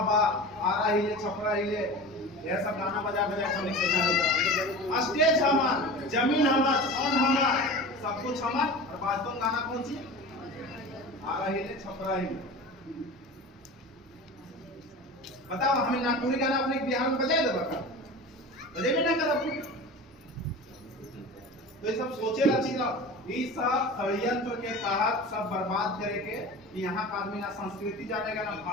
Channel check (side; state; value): both; normal; correlation 0.34